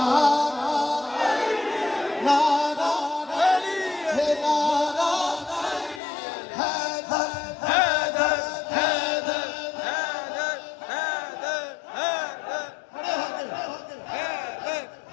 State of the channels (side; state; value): right; drops out; at 6.0 s